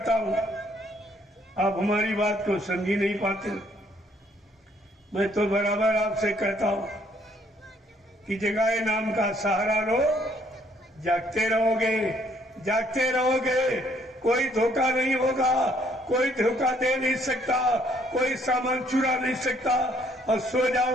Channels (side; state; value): both; normal; correlation 0.65